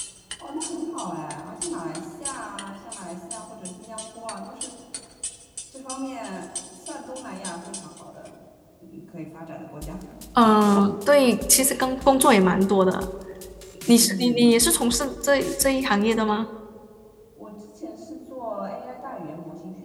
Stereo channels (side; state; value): both; identical; correlation 1.00